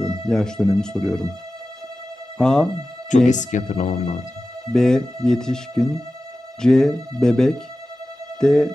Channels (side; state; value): both; normal; correlation 0.94